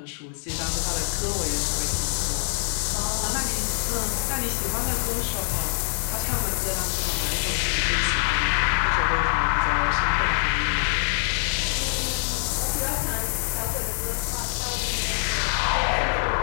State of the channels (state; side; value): silent; right; 62 dB below the other